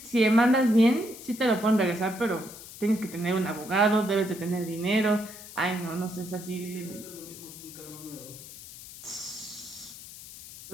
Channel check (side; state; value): left; noise; hiss, 15 dB below the sound